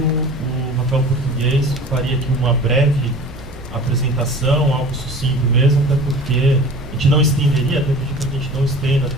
Rafael Português faria aqui uma breve apresentação, algo sucinto mesmo, até porque a gente não estenderia, até pedir para que a gente não estenda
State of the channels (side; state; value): both; normal; correlation 0.41